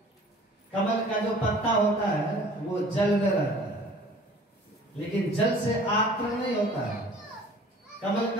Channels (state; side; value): normal; both; correlation 0.49